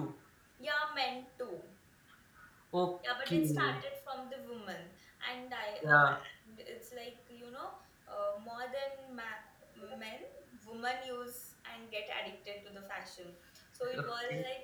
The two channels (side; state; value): both; identical; correlation 1.00